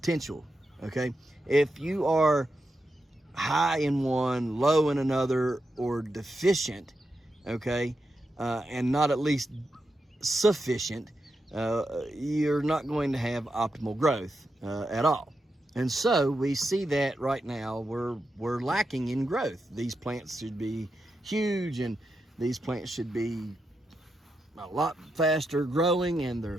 Okay, if you are high in one, low in another, or deficient, okay, and not at least sufficient, you're not going to have optimal growth at all. And so we see that right now we're lacking in growth. These plants should be huge, and these plants should be a lot faster growing, and they're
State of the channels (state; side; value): normal; both; correlation 0.86